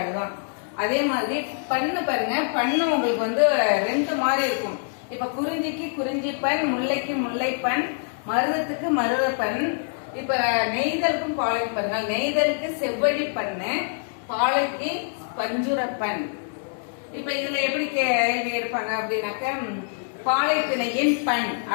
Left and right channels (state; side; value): silent; right; digital silence